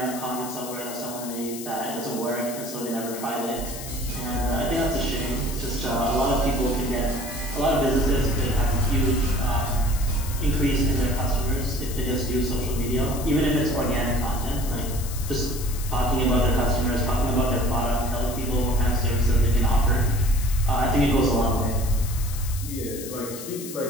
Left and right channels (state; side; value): noise; left; hiss, 11 dB below the sound